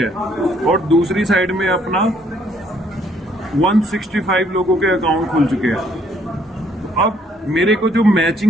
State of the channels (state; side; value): normal; both; correlation 0.66